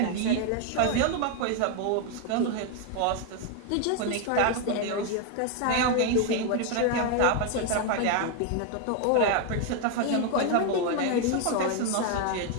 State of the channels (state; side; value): different; both; correlation 0.01